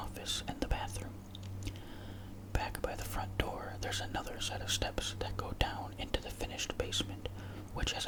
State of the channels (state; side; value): identical; both; correlation 1.00